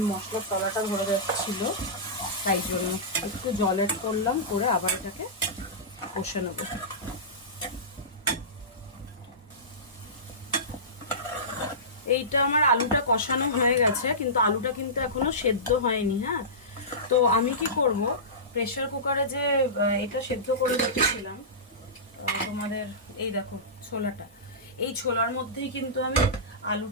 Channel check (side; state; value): both; normal; correlation -0.20